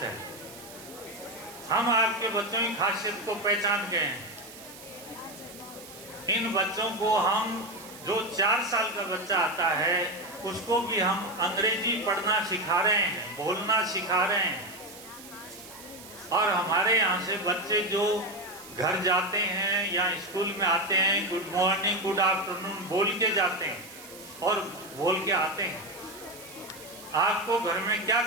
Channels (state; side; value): noise; right; hiss, 17 dB below the sound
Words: है, हम आपके बच्चों की खासियत को पहचान गए हैं। इन बच्चों को हम जो 4 साल का बच्चा आता है उसको भी हम अंग्रेजी पढ़ना सिखा रहे हैं, बोलना सिखा रहे हैं। और हमारे यहाँ से बच्चे जो घर जाते हैं या स्कूल में आते हैं, गुड मॉर्निंग गुड आफ्टरनून बोल के जाते हैं और बोल के आते हैं। आपको घर में क्या